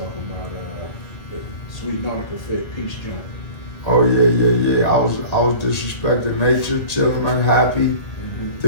about the Sweet Nautica Fit Peach joint. Oh yeah. I was disrespecting nature, chilling, unhappy,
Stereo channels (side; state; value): right; late; 1.7 ms